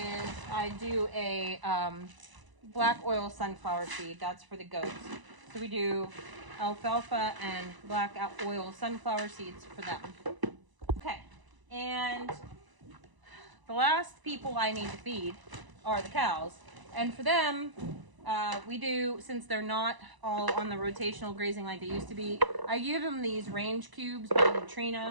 I do a black oil sunflower seed. That's for the goats. So we do alfalfa and black oil sunflower seeds for them. Okay, and the last people I need to feed are the cows. And for them, we do, since they're not all on the rotational grazing like they used to be, I give them these range cubes by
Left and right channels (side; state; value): left; late; 1.0 ms